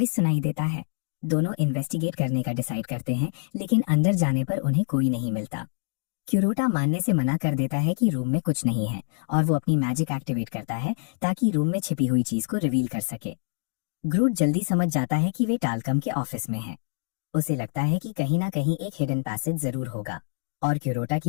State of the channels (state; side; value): silent; right; digital silence